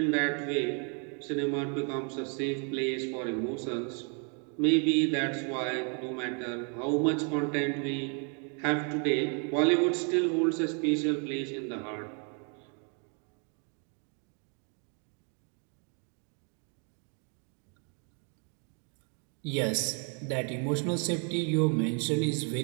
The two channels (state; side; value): quieter; left; 39.0 dB